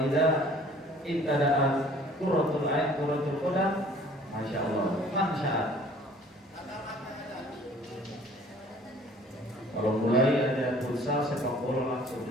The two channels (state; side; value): normal; both; correlation 0.53